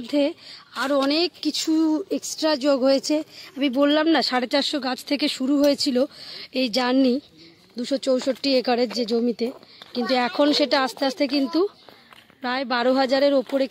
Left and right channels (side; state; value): both; identical; correlation 1.00